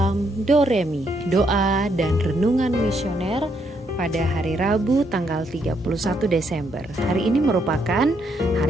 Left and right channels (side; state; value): both; normal; correlation 0.75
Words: Doremi, doa dan renungan misioner pada hari Rabu tanggal 31 Desember. Hari ini merupakan